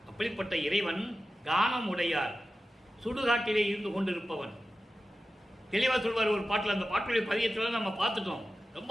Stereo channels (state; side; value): normal; both; correlation 0.94